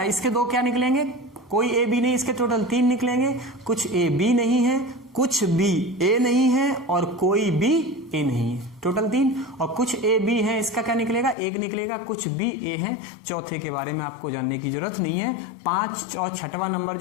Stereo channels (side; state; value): right; drops out; at 11.4 s